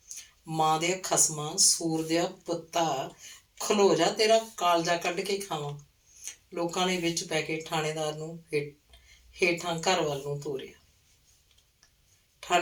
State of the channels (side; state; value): both; identical; correlation 1.00